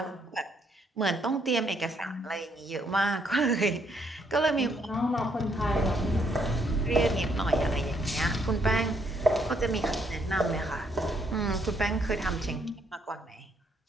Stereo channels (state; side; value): normal; both; correlation 0.71